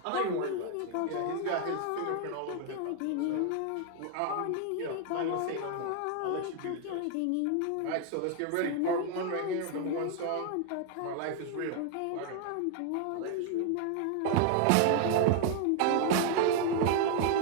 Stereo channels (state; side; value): different; both; correlation 0.00